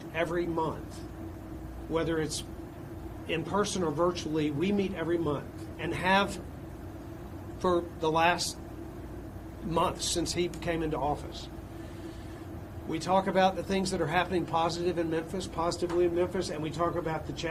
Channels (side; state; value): both; identical; correlation 1.00